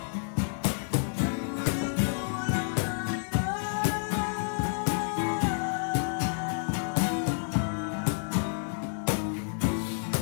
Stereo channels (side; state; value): right; silent; digital silence